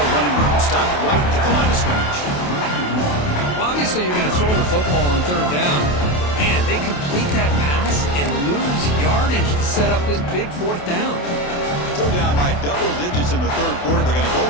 room. Stopped right at the line of scrimmage. Well, obviously, you're going to throw the football on 3rd down. Man, they complete that pass and lose yardage to set up this big 4th down. Still down by double digits in the 3rd quarter. They're going to go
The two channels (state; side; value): late; right; 28 ms